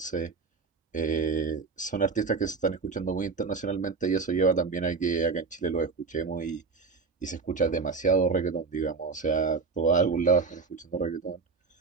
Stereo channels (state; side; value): quieter; left; 4.6 dB